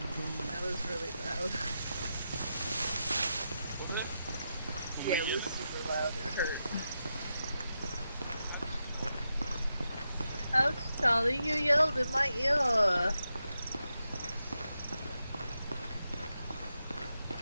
was really loud. Yeah, it was super loud. It hurt. Ouch, Charlie, you yelled in my ear.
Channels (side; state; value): both; inverted; correlation -0.87